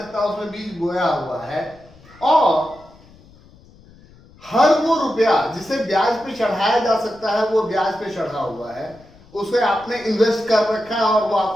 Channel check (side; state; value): left; noise; rumble, 25 dB below the sound